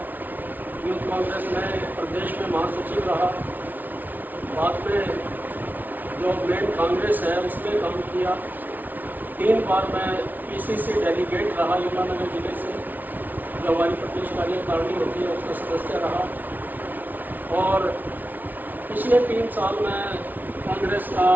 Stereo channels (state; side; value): late; left; 0.082 ms